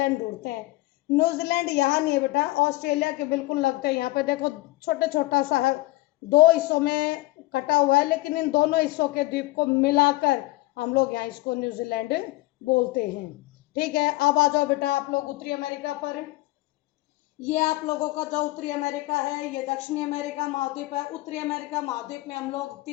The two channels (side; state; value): right; quieter; 19.5 dB